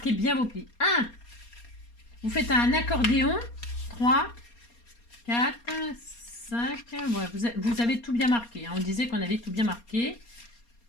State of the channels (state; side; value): late; right; 4.3 ms